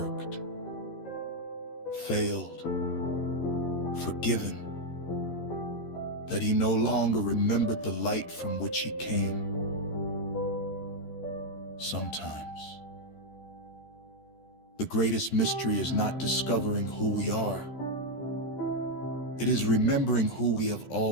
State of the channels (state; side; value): late; right; 13 ms